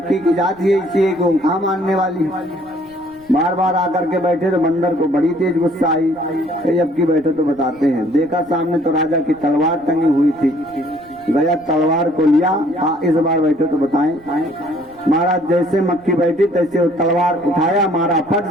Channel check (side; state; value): right; noise; rumble, 28 dB below the sound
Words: की जात ही इसी को कहाँ मानने वाली। बार बार आकर के बैठे तो बंदर को बड़ी तेज गुस्सा आई। अब की बैठे तो बताते हैं, देखा सामने तो राजा की तलवार टंगी हुई थी, गया तलवार को लिया, इस बार बैठे तो बताएं। महाराज जैसे मक्खी बैठी तैसे वो तलवार उठाया, मारा फट